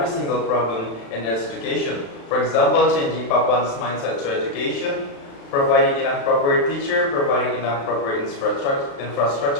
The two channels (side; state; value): right; late; 35 ms